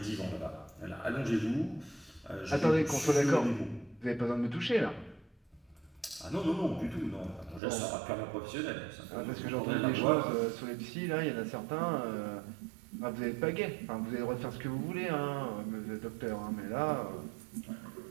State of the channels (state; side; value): drops out; left; at 7.6 s